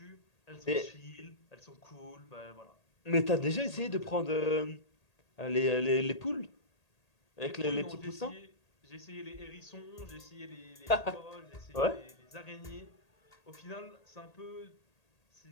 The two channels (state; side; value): late; right; 1.8 ms